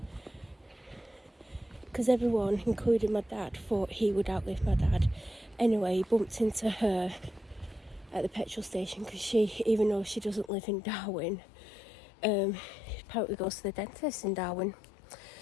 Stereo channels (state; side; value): drops out; right; at 10.5 s